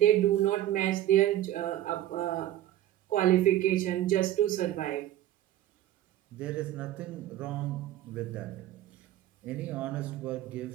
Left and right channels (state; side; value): quieter; left; 13.2 dB